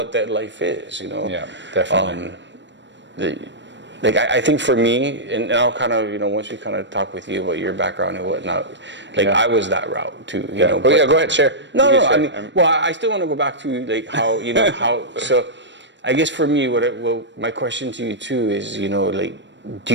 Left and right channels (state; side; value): late; left; 0.53 ms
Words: that life is, Yeah, definitely. I think for me, and I'll kind of, once we kind of talk with you about your background and whatnot, I was that route too, go ahead, share. No, I mean, I still want to go back to like how, so I guess for me, my question to you too is, do